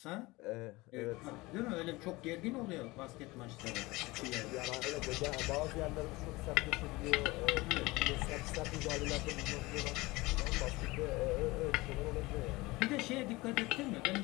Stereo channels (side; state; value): right; quieter; 21.7 dB